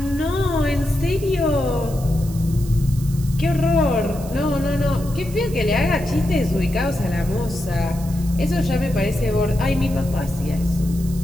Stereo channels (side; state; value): right; noise; hiss, 17 dB below the sound